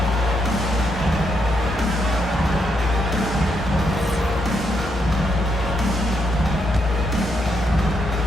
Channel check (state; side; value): normal; both; correlation 0.78